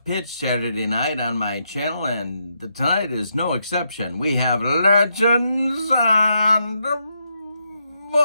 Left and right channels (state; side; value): inverted; both; correlation -0.81